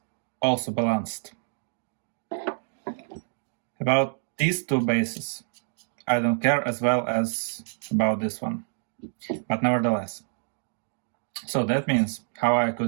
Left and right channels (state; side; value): silent; left; digital silence